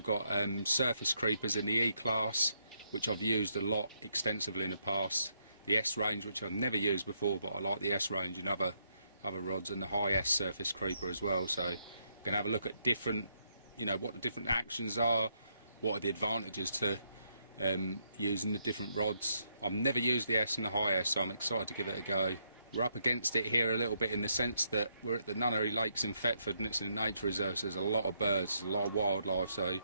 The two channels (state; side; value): inverted; both; correlation -0.76